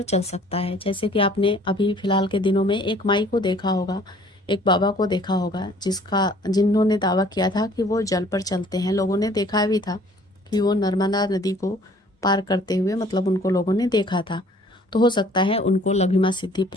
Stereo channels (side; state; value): both; normal; correlation 0.55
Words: चल सकता है। जैसे कि आपने अभी फिलहाल के दिनों में एक माई को देखा होगा, एक बाबा को देखा होगा, जिन्होंने दावा किया था कि वो जल पर चलते हैं। लोगों ने देखा भी था कि वो नर्मदा नदी को पार करते हुए, मतलब उनको लोगों ने देखा था। तो हो सकता है उनको लघिमा सिद्धि